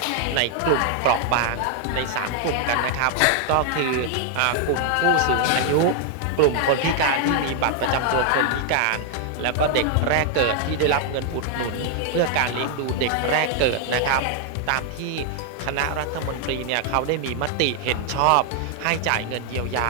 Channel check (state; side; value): different; both; correlation 0.00